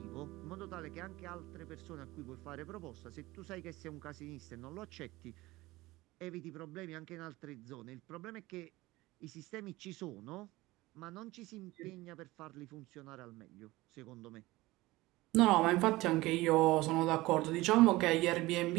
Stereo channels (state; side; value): quieter; left; 19.4 dB